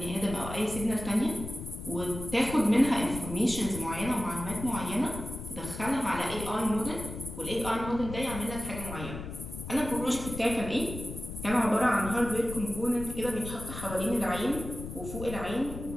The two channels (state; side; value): noise; left; rumble, 9 dB below the sound